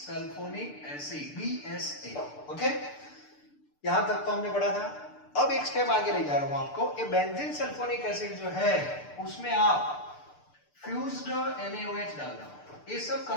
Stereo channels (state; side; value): late; right; 6.8 ms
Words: acid, BSA। Okay, यहां तक तो हमने पढ़ा था। अब एक स्टेप आगे ले जा रहा हूं आपको, ये बेंजीन सल्फोनिक एसिड जो है उसमें आप फ्यूज्ड NaOH डाल दो, ये सब